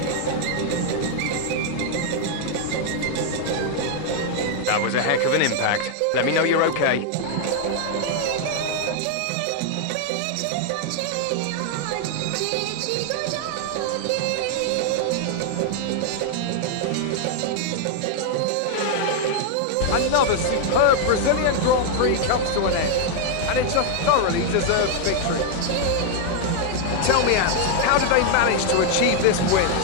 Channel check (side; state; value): both; different; correlation 0.00